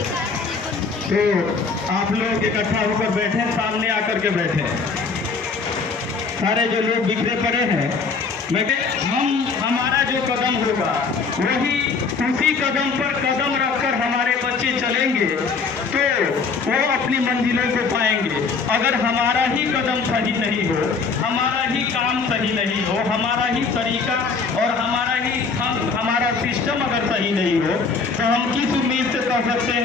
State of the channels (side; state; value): right; quieter; 4.8 dB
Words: तो आप लोग इकट्ठा होकर बैठे, सामने आकर के बैठे। सारे जो लोग बिखरे पड़े हैं, हमारा जो कदम होगा वही, उसी कदम पर कदम रखकर हमारे बच्चे चलेंगे तो वो अपनी मंजिलों को पाएंगे। अगर हमारा ही कदम सही नहीं हो, हमारा ही काम सही नहीं हो, हमारा ही तरीका और हमारा सिस्टम अगर सही नहीं हो तो हम किस उम्मीद से कह सकते